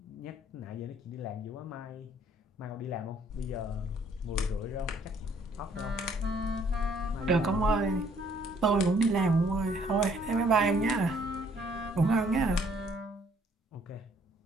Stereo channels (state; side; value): normal; both; correlation 0.62